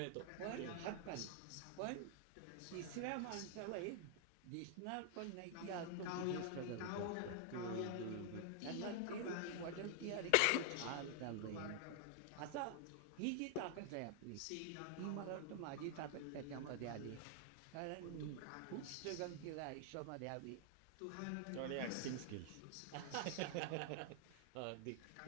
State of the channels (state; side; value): different; both; correlation 0.00